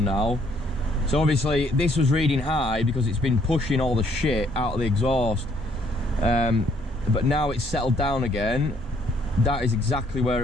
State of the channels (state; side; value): normal; both; correlation 0.66